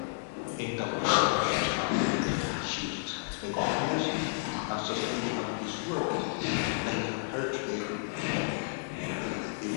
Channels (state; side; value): silent; right; digital silence